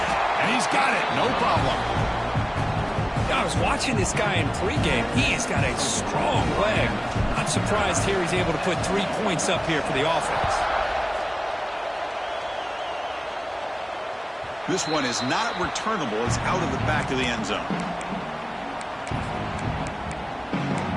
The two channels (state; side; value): identical; both; correlation 1.00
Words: And he's got it, no problem. I was watching this guy in pregame. He has got a strong leg. Not surprised here he's able to put 3 points up here for the offense. This one is not returnable. It's out of the back of the end zone.